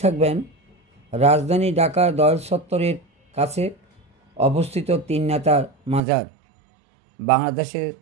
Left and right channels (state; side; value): drops out; left; at 6.0 s